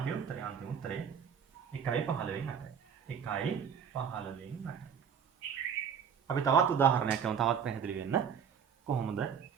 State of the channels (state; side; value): quieter; left; 7.4 dB